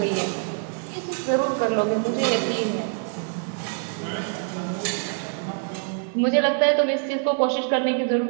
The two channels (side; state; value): left; silent; 57 dB below the other